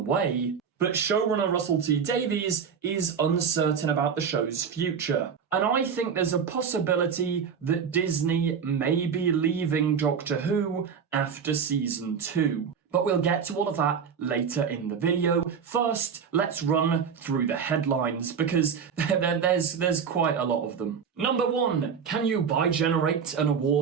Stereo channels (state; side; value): quieter; left; 6.7 dB